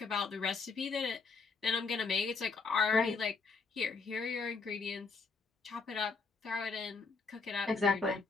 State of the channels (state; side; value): quieter; right; 4.5 dB